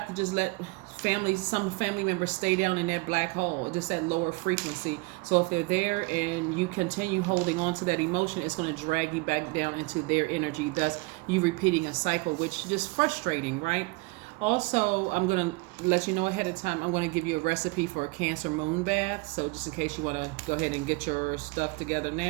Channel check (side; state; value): left; quieter; 25.9 dB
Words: to just let some family members stay down in that black hole, just that lower frequency. So if they're there and you continue holding on to that emotion, it's going to drag you back down into their energy, thus you repeating a cycle, which is just frustrating, right? Also, I'm going to let you know ahead of time, I'm going to give you a recipe for a Cancer moon bath. So just in case you want to go ahead and get your stuff together